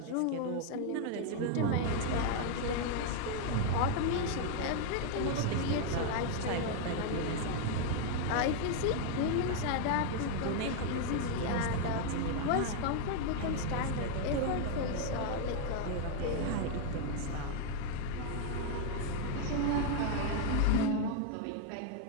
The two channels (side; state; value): both; different; correlation 0.00